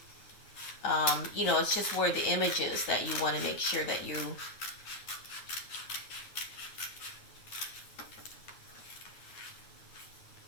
it's just where the image is that you want to make sure that you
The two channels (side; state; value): right; late; 9.5 ms